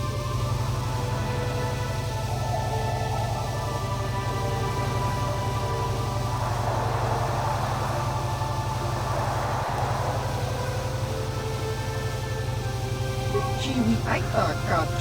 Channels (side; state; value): both; identical; correlation 1.00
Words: chiwi aita ka